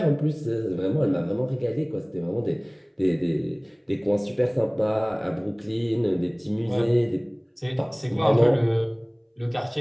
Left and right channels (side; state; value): both; identical; correlation 1.00